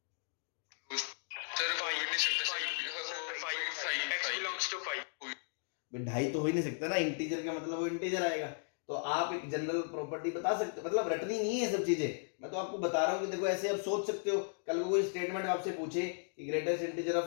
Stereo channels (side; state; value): right; silent; digital silence